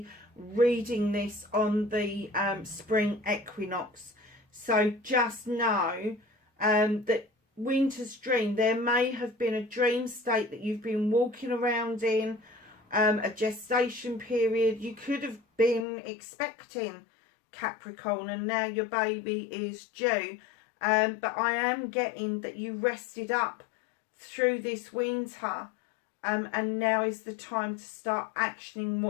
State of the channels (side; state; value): right; drops out; at 15.9 s